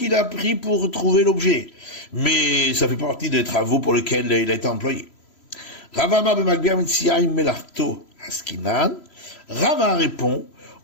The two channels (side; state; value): right; late; 3.0 ms